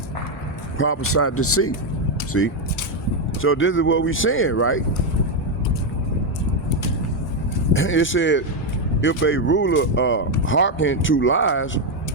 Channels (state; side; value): normal; both; correlation 0.04